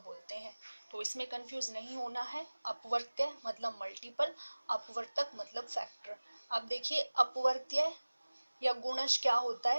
बोलते हैं। तो इसमें कंफ्यूज नहीं होना है। अपवर्त्य मतलब मल्टीपल, अपवर्तक मतलब फैक्टर। अब देखिए अपवर्त्य या गुणज क्या होता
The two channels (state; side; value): inverted; both; correlation -1.00